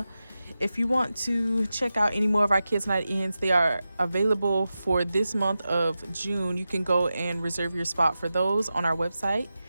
If you want to check out any more of our Kids Night Ins, they are available for this month of June. You can go and reserve your spot for those on our website.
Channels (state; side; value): inverted; both; correlation -0.92